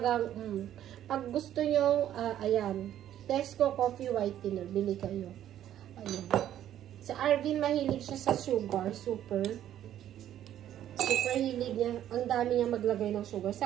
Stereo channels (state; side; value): quieter; left; 11.4 dB